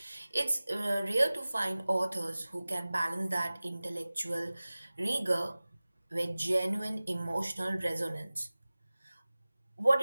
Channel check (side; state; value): both; inverted; correlation -0.98